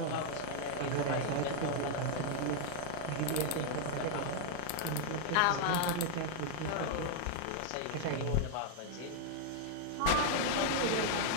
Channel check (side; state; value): both; different; correlation -0.01